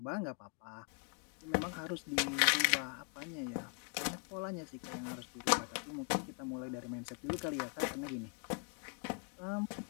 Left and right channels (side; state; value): right; quieter; 38.4 dB